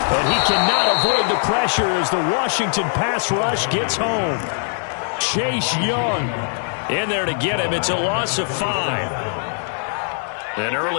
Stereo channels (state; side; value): silent; right; 65 dB below the other